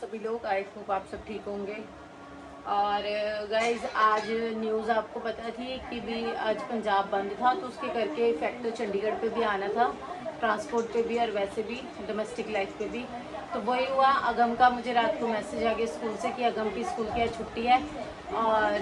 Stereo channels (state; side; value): identical; both; correlation 1.00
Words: लोग। आई होप आप सब ठीक होंगे। और गाइज आज न्यूज़ आपको पता थी कि भी आज पंजाब बंद था, तो उसके करके इफेक्ट तो चंडीगढ़ पे भी आना था, ट्रांसपोर्ट पे भी और वैसे भी डोमेस्टिक लाइफ पे भी। तो वही हुआ, अगम का मुझे रात को मैसेज आ गया स्कूल से कि अगम की स्कूल की आज छुट्टी है।